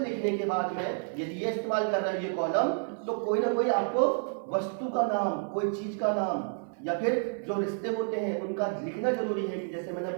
के बाद में यदि ये इस्तेमाल कर रहा है ये कॉलम, तो कोई ना कोई आपको वस्तु का नाम, कोई चीज का नाम, या फिर जो रिश्ते होते हैं उनका लिखना जरूरी है। कि जैसे मैंने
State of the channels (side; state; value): left; silent; 58 dB below the other